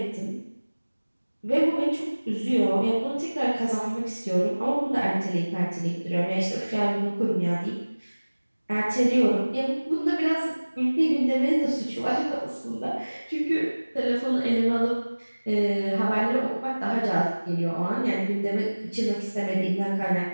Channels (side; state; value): both; inverted; correlation -1.00